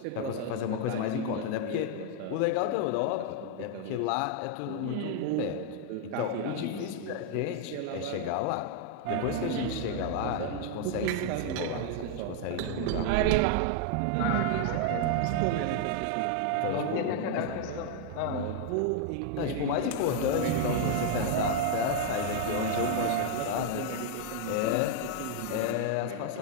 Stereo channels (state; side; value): different; both; correlation 0.00